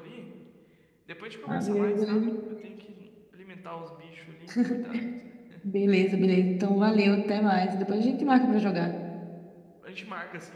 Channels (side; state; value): both; identical; correlation 1.00